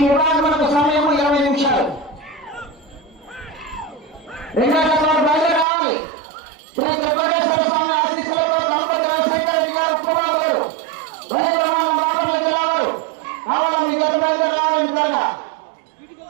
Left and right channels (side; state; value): left; drops out; at 5.7 s